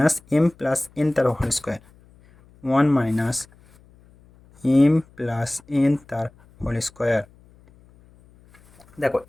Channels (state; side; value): noise; left; hum, 28 dB below the sound